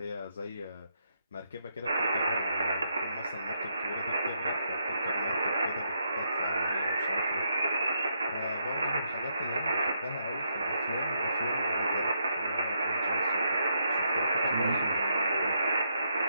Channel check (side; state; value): both; inverted; correlation -0.78